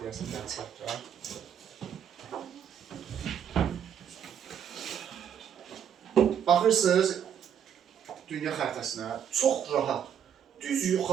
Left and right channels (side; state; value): left; quieter; 8.6 dB